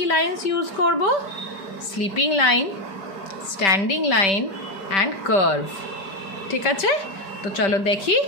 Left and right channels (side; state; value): right; late; 5.1 ms